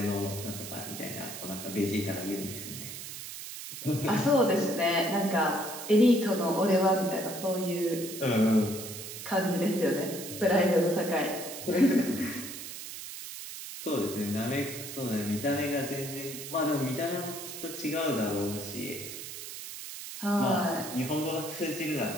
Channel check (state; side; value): noise; right; hiss, 9 dB below the sound